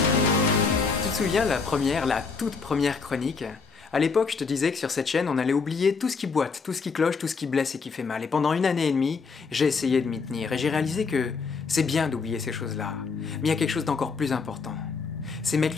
Tu te souviens la toute première chronique? À l'époque, je te disais que sur cette chaîne, on allait oublier tout ce qui boite, tout ce qui cloche, tout ce qui blesse et qui fait mal. Et pendant 1 année et demie, j'ai essayé de m'y tenir. Et j'ai réalisé que c'est bien d'oublier ces choses-là. Mais il y a quelque chose d'encore plus important. C'est mettre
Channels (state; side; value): quieter; right; 4.9 dB